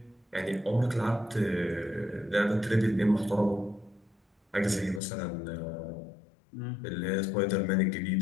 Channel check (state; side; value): drops out; right; at 5.0 s